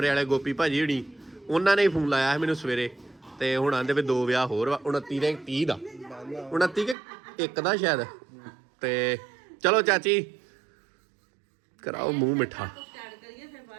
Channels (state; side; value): drops out; left; at 7.0 s